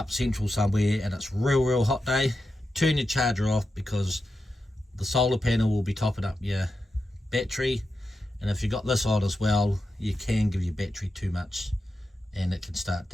central somewhere and it's real hot day, turn your charger off, because the solar panel will be topping up your battery, and if you've got this on as well, you can give your battery too much and it can start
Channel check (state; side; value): normal; both; correlation 0.89